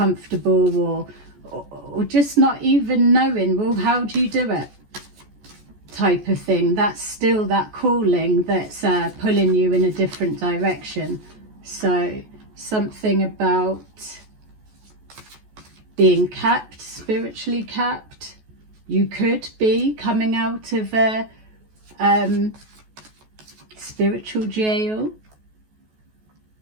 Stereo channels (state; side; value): late; left; 14 ms